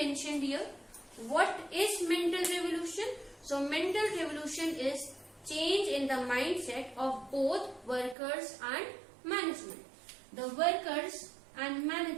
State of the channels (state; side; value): drops out; left; at 8.2 s